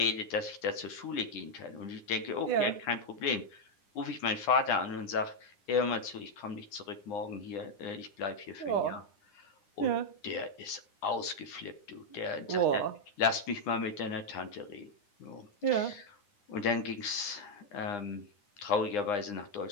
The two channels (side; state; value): right; late; 9.8 ms